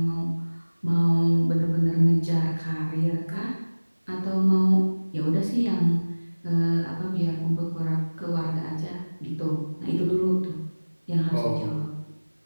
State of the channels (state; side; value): inverted; both; correlation -1.00